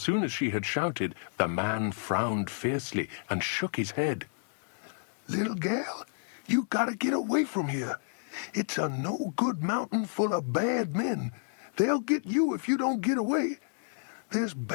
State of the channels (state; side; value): silent; right; digital silence